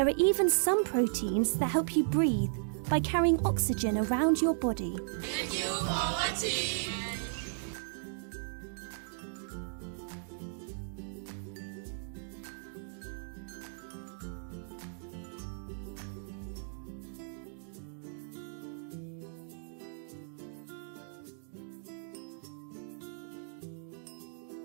are even some proteins that help you breathe by carrying oxygen around your body. Thank you for watching.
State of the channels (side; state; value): left; silent; digital silence